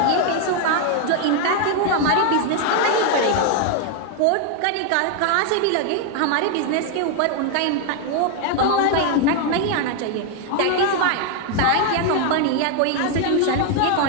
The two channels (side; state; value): both; different; correlation 0.00